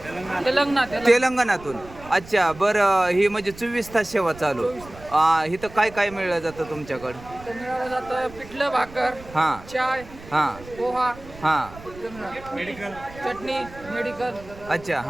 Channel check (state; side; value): noise; right; rumble, 18 dB below the sound